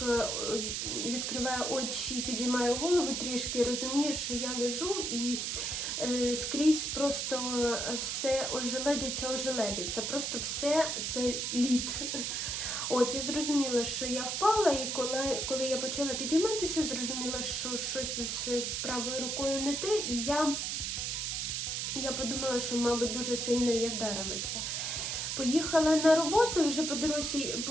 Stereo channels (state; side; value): noise; right; hiss, 1 dB below the sound